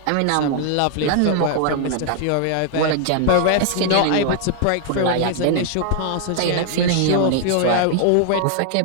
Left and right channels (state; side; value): different; both; correlation -0.01